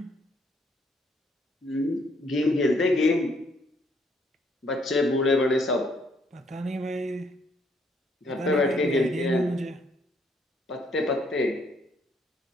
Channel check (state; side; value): normal; both; correlation 0.69